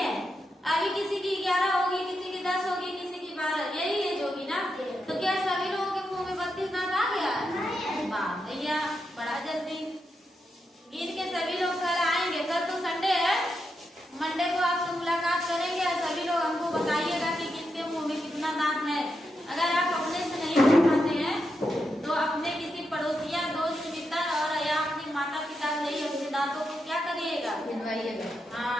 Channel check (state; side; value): normal; both; correlation 0.85